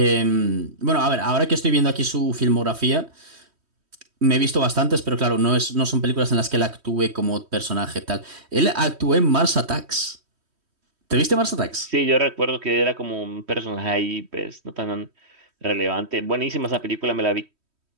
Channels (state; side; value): late; left; 3.1 ms